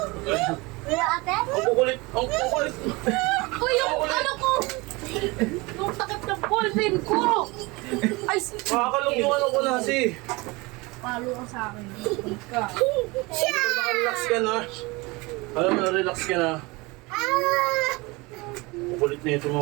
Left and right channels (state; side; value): quieter; left; 24.5 dB